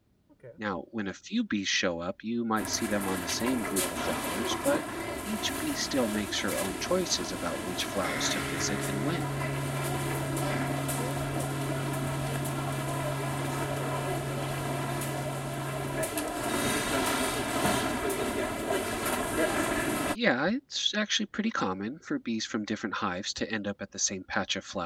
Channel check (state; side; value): identical; both; correlation 1.00